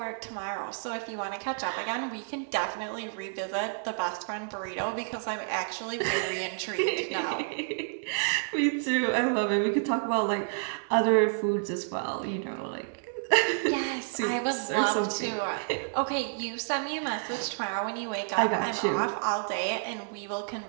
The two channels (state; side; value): silent; left; digital silence